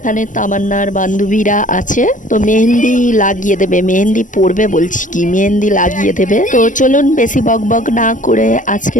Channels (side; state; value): right; late; 0.37 ms